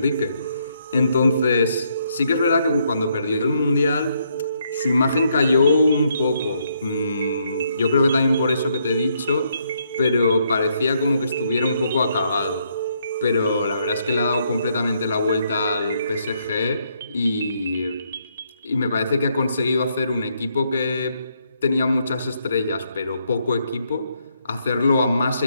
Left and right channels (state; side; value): inverted; both; correlation -0.74